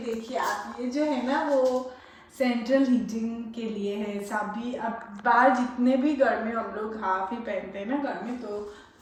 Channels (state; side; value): identical; both; correlation 1.00